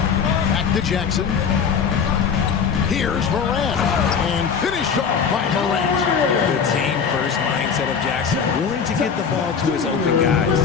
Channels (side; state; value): right; quieter; 6.5 dB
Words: Back to Jackson. Here's Morant. And finished off by Morant. The team-first mindset of Jackson, willing to get the ball to his open